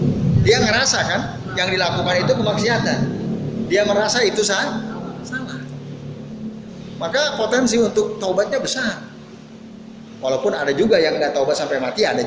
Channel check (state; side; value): identical; both; correlation 1.00